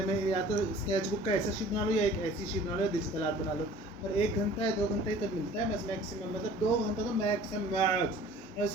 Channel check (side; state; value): both; normal; correlation 0.48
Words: में। या तो स्केच बुक का ऐसा शीट बना लो या एक ऐसी शीट बना लो, डिजिटल आर्ट बना लो। और 1 घंटा या 2 घंटा ही तक मिलता है बस मैक्सिमम, मतलब 2 घंटा तो मैक्स।